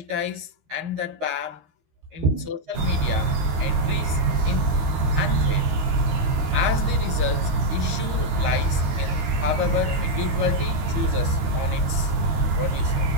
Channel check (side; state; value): left; late; 13 ms